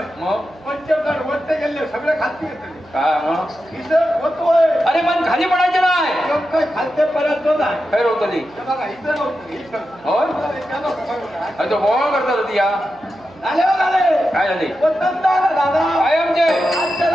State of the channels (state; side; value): noise; right; hum, 26 dB below the sound